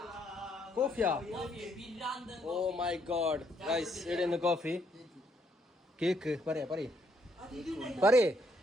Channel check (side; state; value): both; normal; correlation 0.72